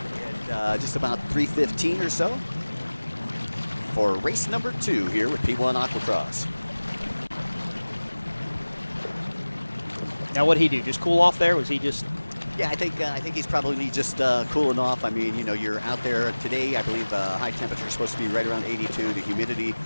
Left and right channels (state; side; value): inverted; both; correlation -1.00